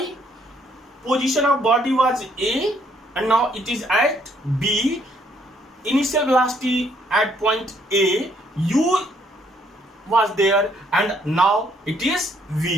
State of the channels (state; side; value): normal; both; correlation 0.68